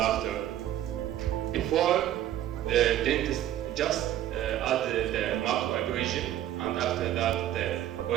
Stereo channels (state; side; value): quieter; left; 12.3 dB